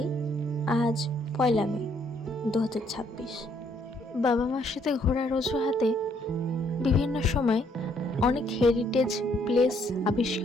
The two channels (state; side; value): normal; both; correlation 0.68